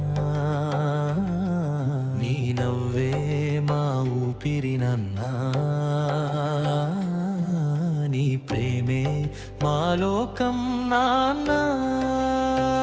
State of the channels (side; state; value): both; identical; correlation 1.00